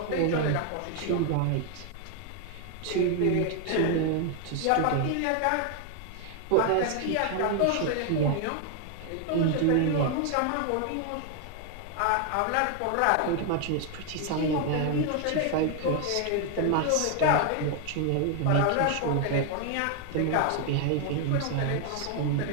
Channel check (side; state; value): both; different; correlation 0.00